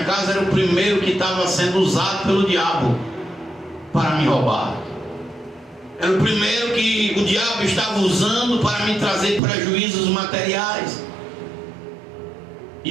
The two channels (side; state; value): left; drops out; at 9.4 s